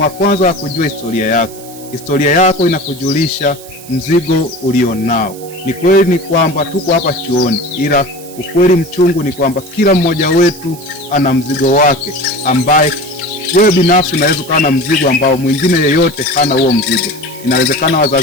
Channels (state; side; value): noise; right; hiss, 18 dB below the sound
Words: wa kwanza wa kujua historia yako. Historia yako inakujulisha mzigo ulionao. Ni kweli ni kwamba tuko hapa chuoni, ila ukweli mchungu ni kwamba kila mmoja wetu ana mzigo wake, ambaye wewe binafsi unaweza kuwa na mzigo ambao mwingine yeyote hana huo mzigo. Inawezekana